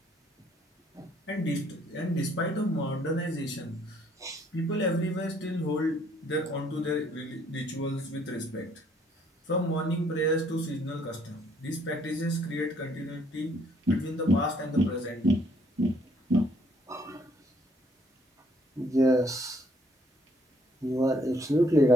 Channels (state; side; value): normal; both; correlation 0.65